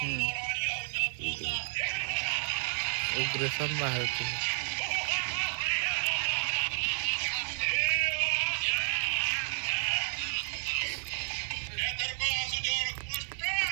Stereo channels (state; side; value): silent; left; 57 dB below the other